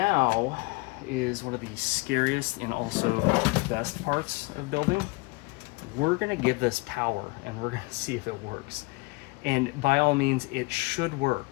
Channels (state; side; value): quieter; right; 25.4 dB